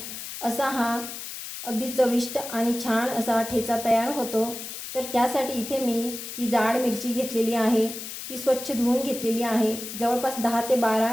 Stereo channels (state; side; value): noise; left; hiss, 9 dB below the sound